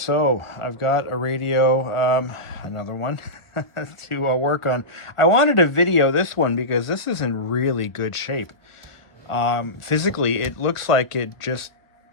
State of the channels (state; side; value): late; right; 1.5 ms